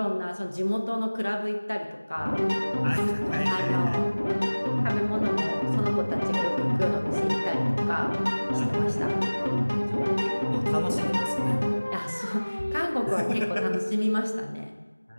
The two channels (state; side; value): inverted; both; correlation -1.00